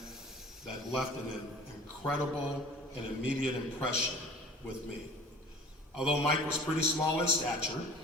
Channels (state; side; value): normal; both; correlation 0.45